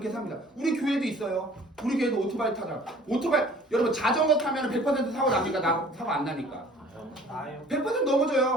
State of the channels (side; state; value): both; normal; correlation 0.51